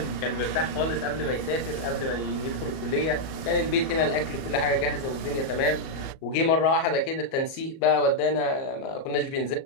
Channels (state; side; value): late; right; 37 ms